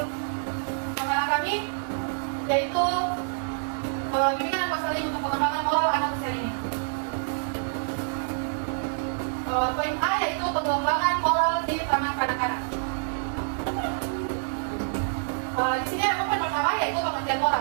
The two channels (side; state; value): left; silent; digital silence